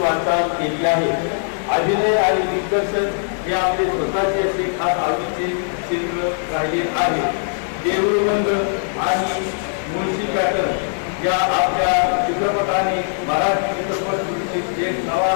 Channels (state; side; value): silent; right; digital silence